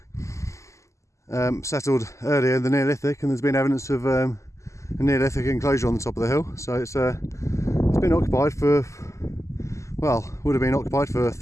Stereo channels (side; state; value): right; late; 0.14 ms